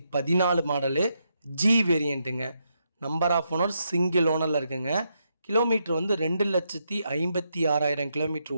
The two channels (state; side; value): inverted; both; correlation -0.81